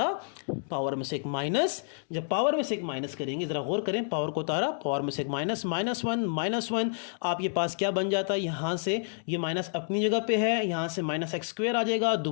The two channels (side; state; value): right; silent; digital silence